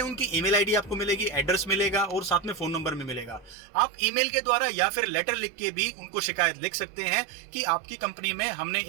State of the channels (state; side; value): drops out; left; at 3.6 s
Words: उनकी ईमेल आईडी आपको मिलेगी, एड्रेस मिलेगा और साथ में फोन नंबर भी मिलेगा। आप ईमेल के द्वारा या फिर लेटर लिख के भी उनको शिकायत लिख सकते हैं कि आपकी कंपनी में हमने